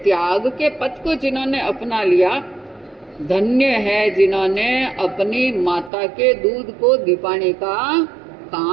त्याग के पथ को जिन्होंने अपना लिया, धन्य है जिन्होंने अपनी माता के दूध को दीपाने का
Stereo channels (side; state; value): left; drops out; at 5.9 s